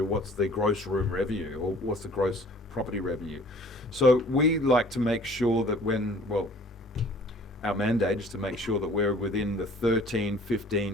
what's the gross room revenue or what's the gross property revenue? So we like to make sure that our mandate is to make sure that we're within the 13,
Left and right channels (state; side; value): normal; both; correlation 0.51